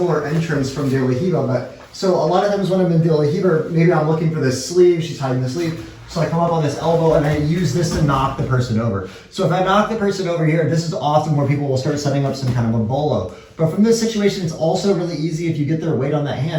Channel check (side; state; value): both; identical; correlation 1.00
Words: entrance from De La Riva, but so a lot of times when I'm in De La Riva, maybe I'm looking for this sleeve, she's hiding the sleeve. So I come up on this elbow and I use this to knock the person over. So if I knock the person over here, this is often where people will start setting up some kind of a bolo. But from this situation, it's also really easy if you get their weight on that